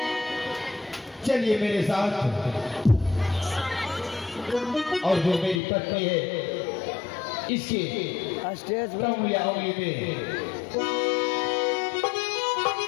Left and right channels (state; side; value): drops out; right; at 5.6 s